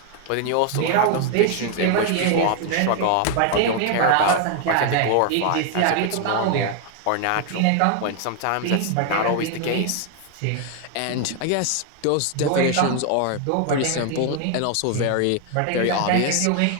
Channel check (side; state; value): both; different; correlation 0.00